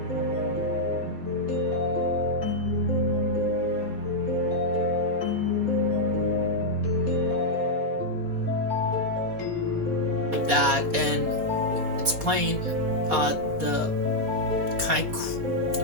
like that, and it's playing the kind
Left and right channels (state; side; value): late; left; 4.2 ms